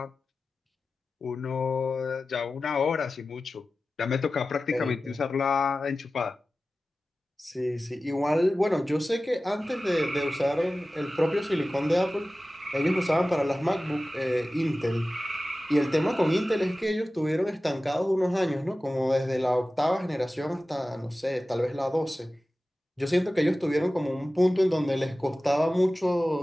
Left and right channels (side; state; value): both; normal; correlation 0.96